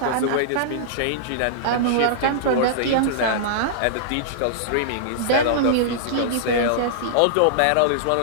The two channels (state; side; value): different; both; correlation -0.02